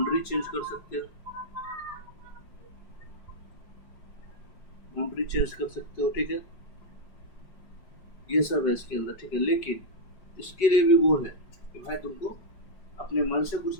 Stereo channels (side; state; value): right; late; 5.3 ms